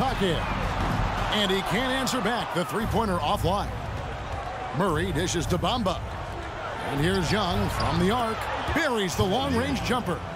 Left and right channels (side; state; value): both; identical; correlation 1.00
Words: And he can't answer back. The three-pointer offline. Murray dishes to Bamba. And here's Young from the arc. Buries the long-range jumper.